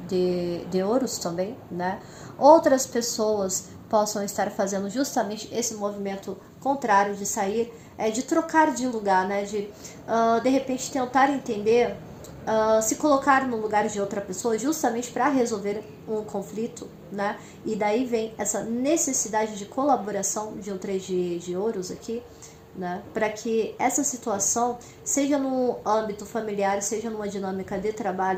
de ouros também, né? Outras pessoas possam estar fazendo justamente esse movimento contrário de sair, de trocar de lugar, né? De repente tentar entender, se colocar no lugar de outra pessoa justamente para resolver um conflito, né? E daí vem essa necessidade de colaboração de um 3 de ouros aqui, né? Para que essa situação, seja no âmbito familiar, seja numa dinâmica de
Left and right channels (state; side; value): identical; both; correlation 1.00